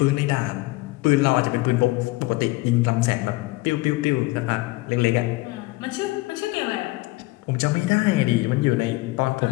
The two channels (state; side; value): quieter; right; 21.2 dB